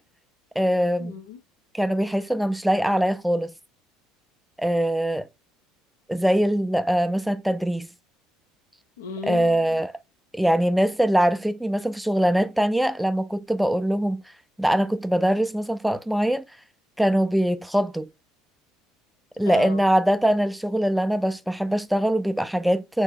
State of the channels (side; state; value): both; normal; correlation 0.97